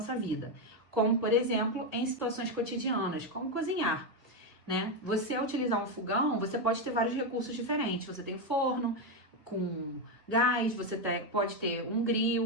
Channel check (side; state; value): both; normal; correlation 0.07